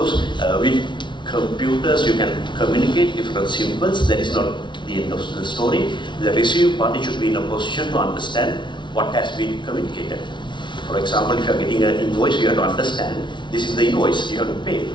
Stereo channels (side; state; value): right; late; 0.23 ms